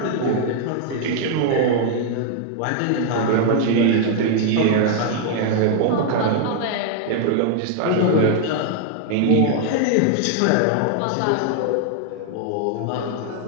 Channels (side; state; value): both; different; correlation 0.00